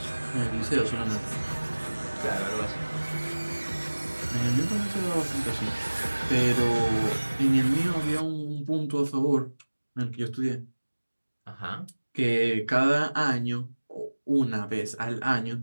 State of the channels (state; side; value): inverted; both; correlation -1.00